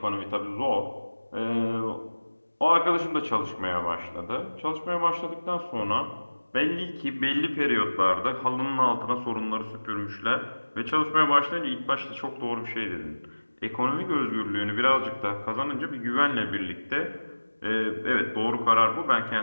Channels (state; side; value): inverted; both; correlation -1.00